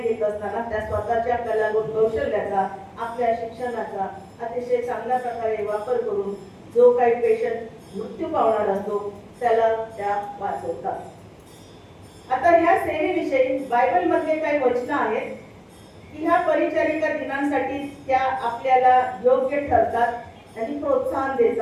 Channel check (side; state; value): both; identical; correlation 1.00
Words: असताना त्या स्वतःच्या कलागुण कौशल्याचा, आपल्या शिक्षणाचा अतिशय चांगल्या प्रकारे वापर करून जो काही पेशंट मृत्यू पावणार असतो त्याला त्या वाचवतात. आता ह्या सेवेविषयी बायबल मधले काही वचनं आहेत की ह्या परिचारिका दिनांसाठी त्या आपल्याला योग्य ठरतात आणि प्रोत्साहन